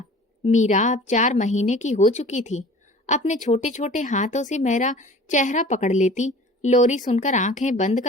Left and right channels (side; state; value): both; normal; correlation 0.44